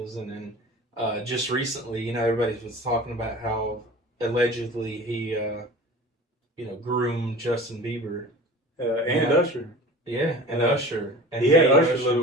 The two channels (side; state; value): both; normal; correlation 0.39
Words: and then just recently, you know, everybody was talking about how allegedly he, you know, groomed Justin Bieber and Usher. Yeah, and Usher. And he had Usher